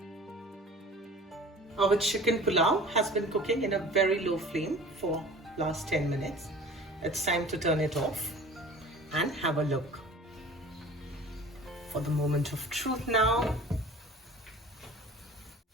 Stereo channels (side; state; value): both; normal; correlation 0.43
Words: Our chicken pulao has been cooking in a very low flame for last 10 minutes. It's time to turn it off and have a look. For the moment of truth now,